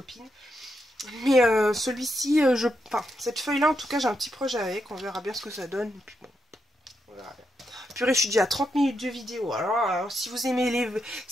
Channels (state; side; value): normal; both; correlation 0.83